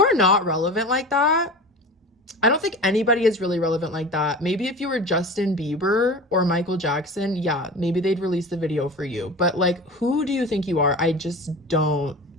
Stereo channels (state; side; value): normal; both; correlation 0.33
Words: not relevant like that. I don't think anybody is really relevant like that. Maybe if you were Justin Bieber or Michael Jackson, yeah, maybe they'd release the video for you. But like, who do you think you are? I just don't